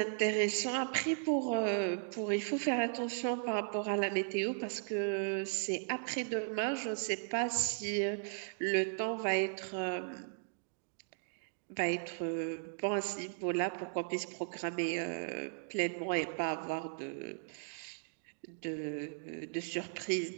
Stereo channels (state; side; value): silent; left; digital silence